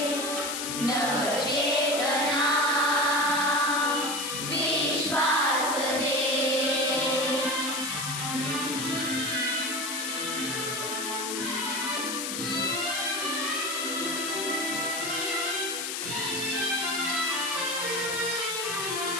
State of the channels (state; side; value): noise; left; hiss, 3 dB below the sound